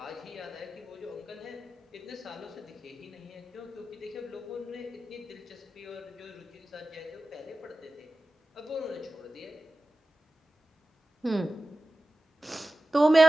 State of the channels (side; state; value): both; normal; correlation 0.95